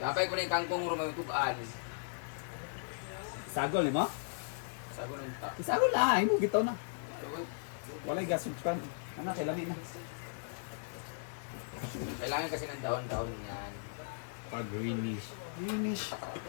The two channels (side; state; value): right; silent; digital silence